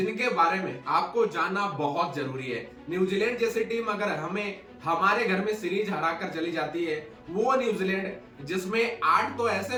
बारे में आपको जानना बहुत जरूरी है। न्यूजीलैंड जैसी टीम अगर हमें हमारे घर में सीरीज हराकर चली जाती है, वो न्यूजीलैंड जिसमें 8 तो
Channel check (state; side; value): identical; both; correlation 1.00